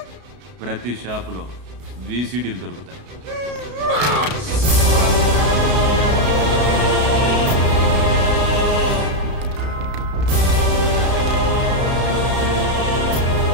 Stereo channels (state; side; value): late; left; 33 ms